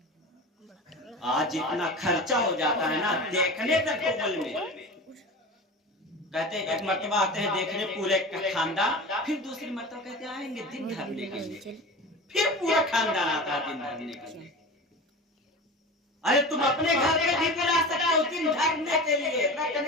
आज इतना खर्चा हो जाता है ना देखने तक कोमल में। कहते हैं एक मर्तबा आते हैं देखने पूरे खानदान, फिर दूसरी मर्तबा कहते हैं आएंगे दिन धरने के लिए, फिर पूरा खानदान आता है दिन धरने के लिए। अरे तुम अपने घर पे भी बुला सकते हो दिन धरने के लिए,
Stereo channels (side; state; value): both; normal; correlation 0.31